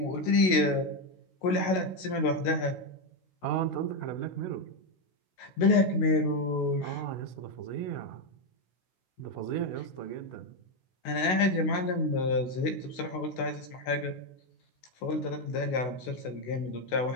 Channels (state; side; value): late; right; 16 ms